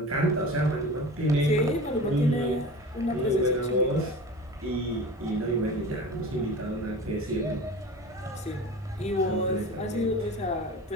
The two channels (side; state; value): both; normal; correlation 0.35